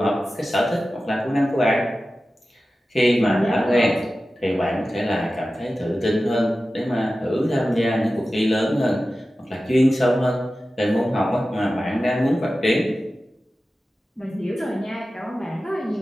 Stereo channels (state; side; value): normal; both; correlation 0.94